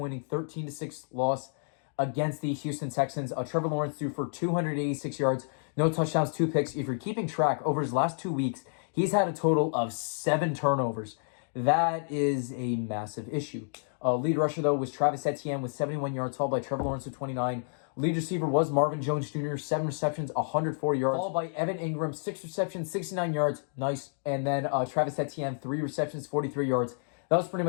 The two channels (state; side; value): silent; right; digital silence